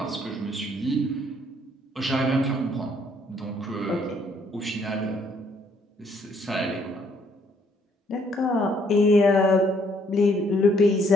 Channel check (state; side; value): normal; both; correlation 0.67